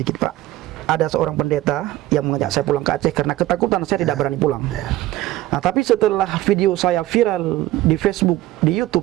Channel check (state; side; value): quieter; left; 15.9 dB